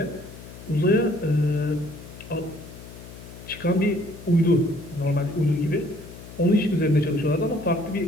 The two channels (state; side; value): noise; left; hum, 16 dB below the sound